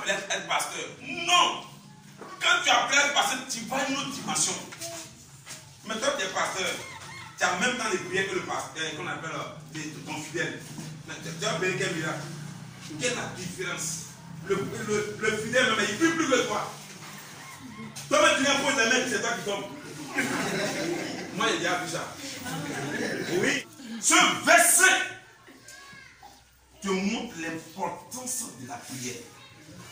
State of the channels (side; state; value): both; identical; correlation 1.00